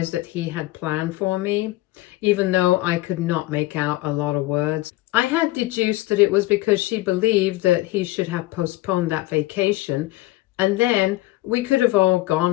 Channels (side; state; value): right; quieter; 18.1 dB